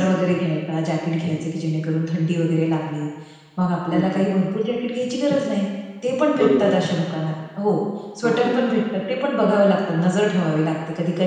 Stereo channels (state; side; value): identical; both; correlation 1.00